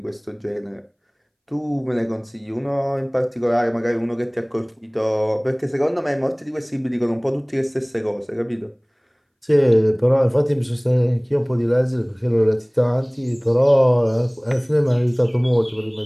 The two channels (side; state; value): both; identical; correlation 1.00